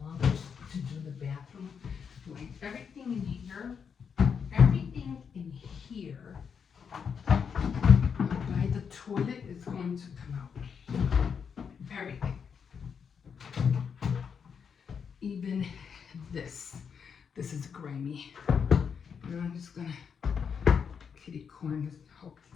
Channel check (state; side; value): quieter; right; 6.7 dB